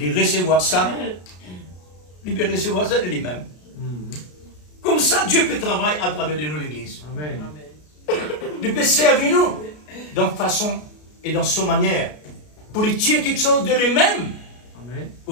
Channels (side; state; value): right; late; 33 ms